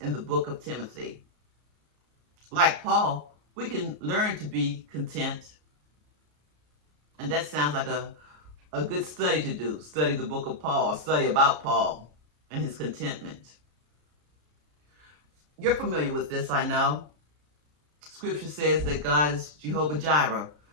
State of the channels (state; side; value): late; left; 33 ms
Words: in the book of Timothy. Like Paul, we can learn to be content. And that sounds like a good study to do. Study the book of Paul, study about Paul and his contentment. You're familiar with this, I know. Scripture says that God is Jehovah Jireh,